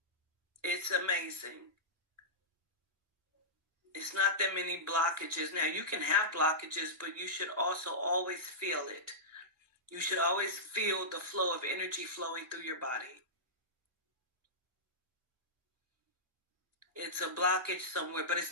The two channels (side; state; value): both; normal; correlation -0.14